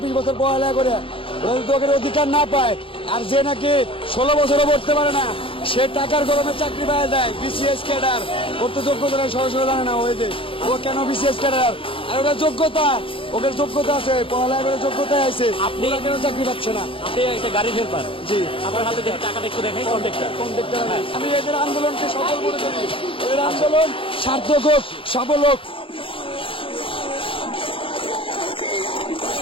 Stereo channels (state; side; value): late; right; 0.26 ms